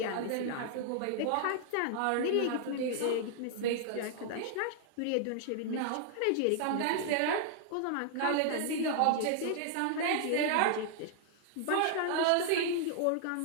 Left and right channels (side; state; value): both; different; correlation -0.01